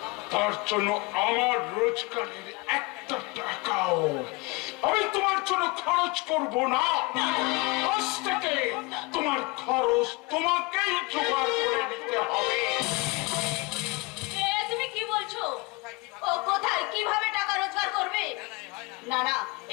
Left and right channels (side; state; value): right; quieter; 26.1 dB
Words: তার জন্য আমার রোজগারের একটা টাকাও আমি তোমার জন্য খরচ করব না। আজ থেকে তোমার খরচ তোমাকেই জোগাড় করে নিতে হবে। তুমি কি বলছো? ও কোথায় কিভাবে টাকা রোজগার করবে? না না,